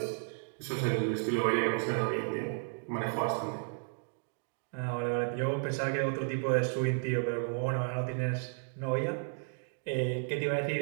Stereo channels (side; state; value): left; silent; 56 dB below the other